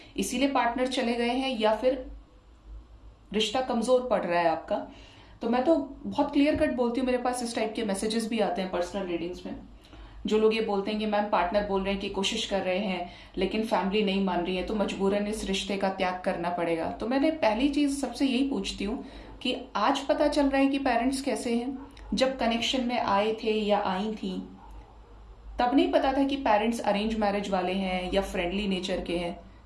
इसीलिए पार्टनर चले गए हैं या फिर रिश्ता कमजोर पड़ रहा है आपका। तो मैं तो बहुत क्लियर कट बोलती हूँ, मेरे पास इस टाइप के मैसेजेस भी आते हैं पर्सनल रीडिंग्स में, जो लोग ये बोलते हैं कि मैम पार्टनर बोल रहे हैं कि कोशिश कर रहे हैं लेकिन फैमिली नहीं मान रही है, तो मजबूरन इस रिश्ते का त्याग करना पड़ेगा। तो मैंने पहली चीज सबसे यही पूछती हूँ कि आज पता चल रहा है कि पेरेंट्स कैसे हैं, जब कनेक्शन में आए थे या आई थी तब नहीं पता था कि पेरेंट्स अरेंज मैरिज वाले हैं या फ्रेंडली नेचर के हैं।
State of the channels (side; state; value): both; identical; correlation 1.00